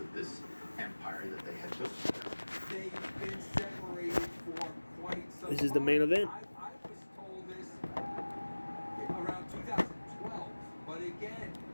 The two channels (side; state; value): both; inverted; correlation -1.00